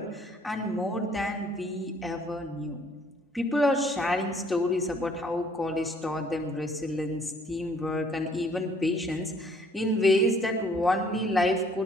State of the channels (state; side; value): normal; both; correlation 0.61